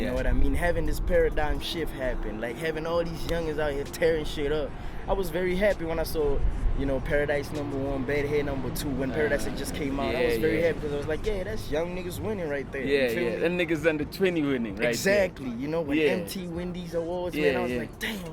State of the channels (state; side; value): identical; both; correlation 1.00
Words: know what I mean? Having this paradigm shift happen, like having all these youngins out here tearing shit up. I was very happy when I saw, you know, Paradise #1, Bad Hair #2, when Paradise had just came out. I was very happy because I was like, yeah, that's young niggas winning right there. You feel me? That niggas under 20 winning, right? Exactly. You know, when Yeah. MT win these awards, man, I was like,